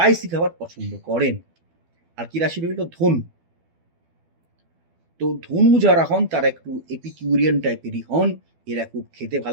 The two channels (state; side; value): late; left; 12 ms